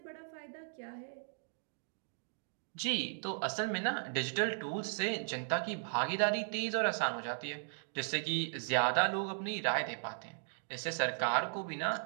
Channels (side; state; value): left; silent; digital silence